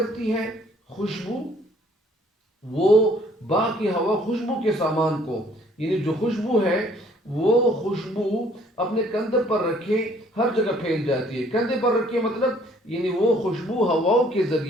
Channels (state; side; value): normal; both; correlation 0.60